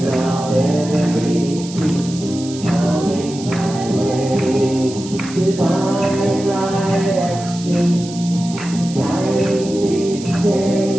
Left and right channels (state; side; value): noise; right; hiss, 14 dB below the sound